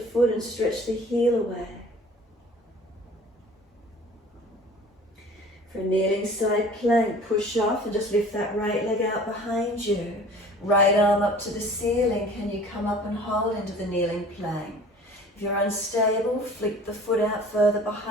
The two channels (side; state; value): both; normal; correlation 0.46